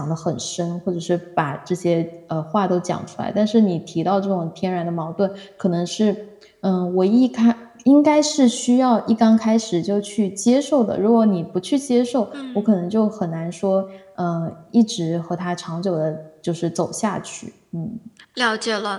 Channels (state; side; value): identical; both; correlation 1.00